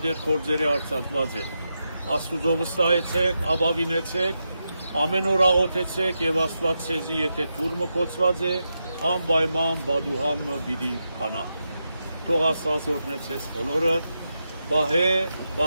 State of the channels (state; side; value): inverted; both; correlation -0.87